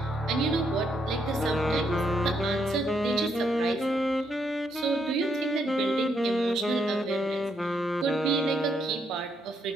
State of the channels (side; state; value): both; normal; correlation 0.76